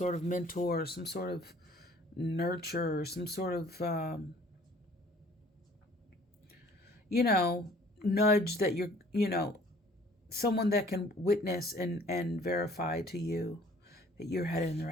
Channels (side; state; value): both; normal; correlation 0.54